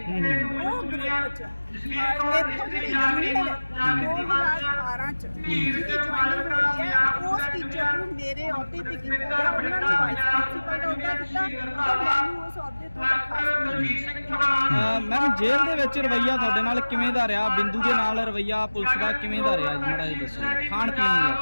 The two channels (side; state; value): both; inverted; correlation -1.00